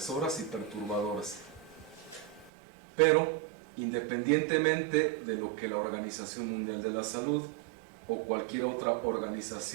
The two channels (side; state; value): left; drops out; at 2.5 s